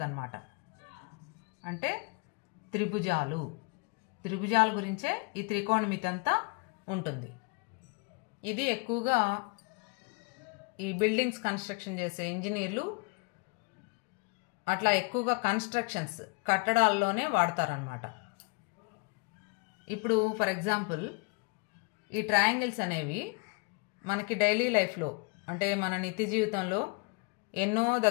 అంటే త్రిభుజాల గురించే ఈ త్రికోణమితి అంతా ఉంటుంది. ఇది ఎక్కువగా ఈ బిల్డింగ్స్ కన్స్ట్రక్షన్ చేసే ఇంజనీర్లు అట్లా ఎక్కువగా కన్స్ట్రక్షన్స్ కట్టడాల్లోనే వాడతారనమాట. ఇప్పుడు ఫర్ ఎగ్జాంపుల్ ఈ ట్రయాంగిల్స్ అనేవి మనకి డైలీ లైఫ్లో అంటే మన నిత్య జీవితంలో ఎన్నో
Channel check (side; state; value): right; quieter; 29.9 dB